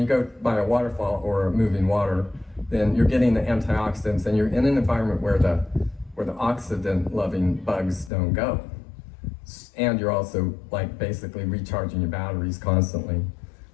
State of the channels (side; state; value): right; drops out; at 8.1 s